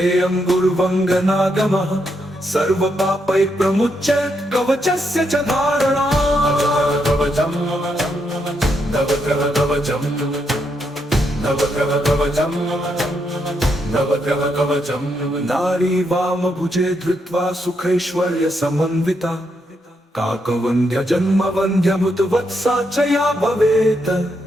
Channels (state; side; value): normal; both; correlation 0.79